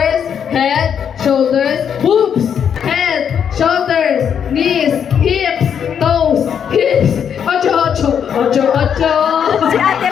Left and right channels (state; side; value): quieter; right; 8.0 dB